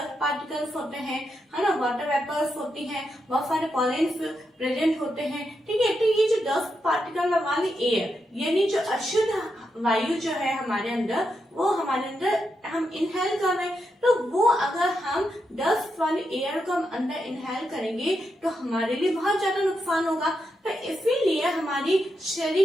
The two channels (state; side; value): normal; both; correlation 0.84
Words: पार्टिकल्स होते हैं, है ना, वाटर वेपर्स होती हैं, बहुत सारे पॉलेंस प्रेजेंट होते हैं, ठीक है। तो ये जो डस्ट पार्टिकल वाली एयर यानी जो अशुद्ध वायु जो है हमारे अंदर, वो हमारे अंदर हम इनहेल कर रहे हैं, तो वो अगर हम डस्ट वाली एयर को हम अंदर इनहेल करेंगे तो हमारे लिए बहुत ज्यादा नुकसान होगा। तो इसीलिए हमारी